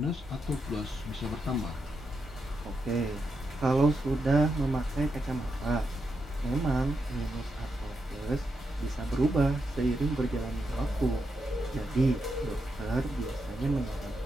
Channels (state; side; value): normal; both; correlation 0.84